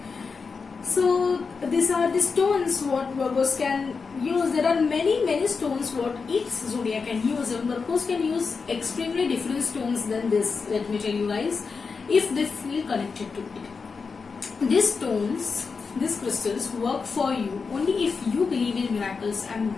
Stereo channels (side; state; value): right; quieter; 5.0 dB